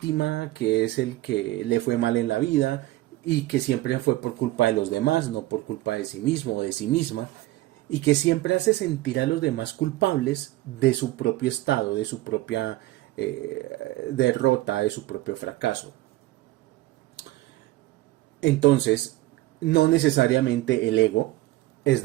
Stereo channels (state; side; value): quieter; left; 17.3 dB